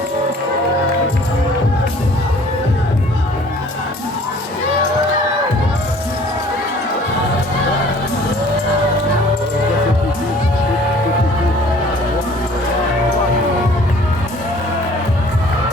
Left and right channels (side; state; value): both; normal; correlation 0.52